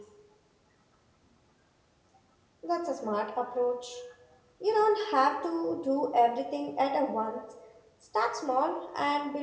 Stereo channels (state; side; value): identical; both; correlation 1.00